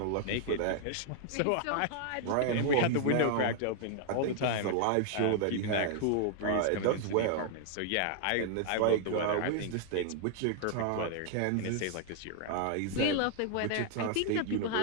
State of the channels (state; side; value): different; both; correlation 0.00